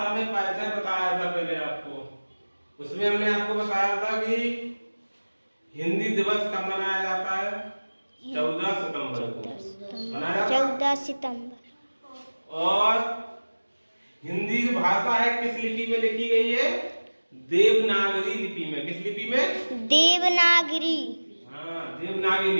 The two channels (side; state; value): both; inverted; correlation -1.00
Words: में परिचय बताया था पहले आपको। उसमें हमने आपको बताया था कि हिंदी दिवस कब मनाया जाता है? 14 सितंबर को मनाया 14 सितंबर। और हिंदी जो भाषा है किस लिपि में लिखी गई है? देवनागरी लिपि में। किस लिपि में? देवनागरी। हाँ, देवनागरी